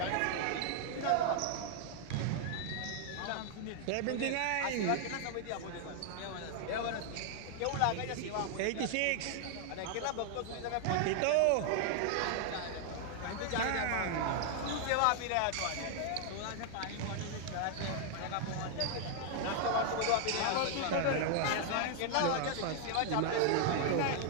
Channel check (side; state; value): both; different; correlation 0.00